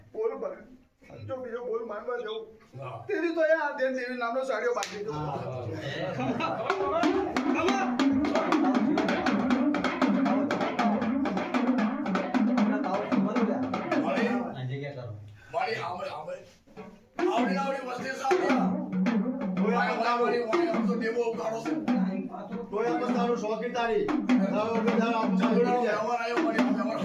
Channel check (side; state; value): both; identical; correlation 1.00